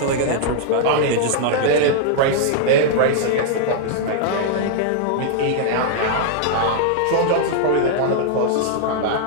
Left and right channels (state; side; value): different; both; correlation -0.01